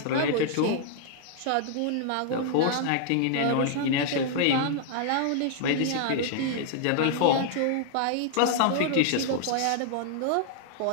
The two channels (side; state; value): both; different; correlation -0.01